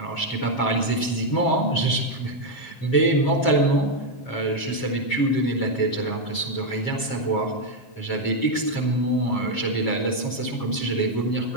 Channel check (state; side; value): late; right; 7.3 ms